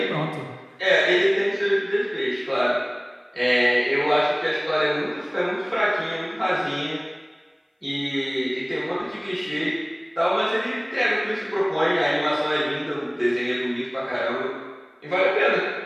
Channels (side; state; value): both; identical; correlation 1.00